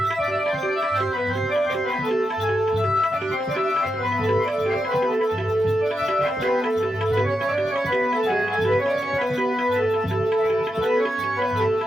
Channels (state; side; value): normal; both; correlation 0.87